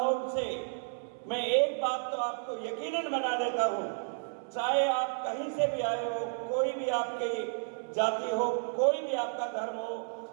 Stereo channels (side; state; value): left; silent; 57 dB below the other